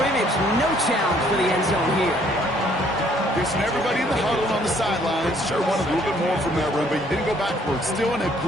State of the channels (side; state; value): both; normal; correlation 0.63